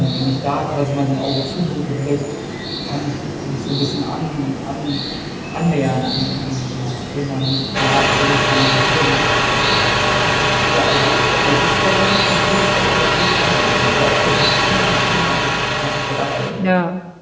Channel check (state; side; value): identical; both; correlation 1.00